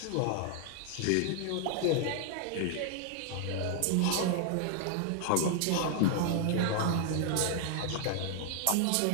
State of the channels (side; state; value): both; different; correlation 0.00